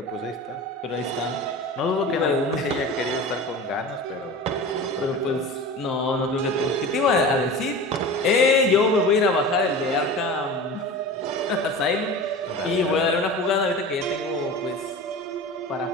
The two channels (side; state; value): both; normal; correlation 0.33